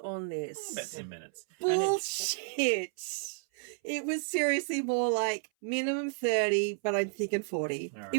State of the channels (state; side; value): silent; left; 57 dB below the other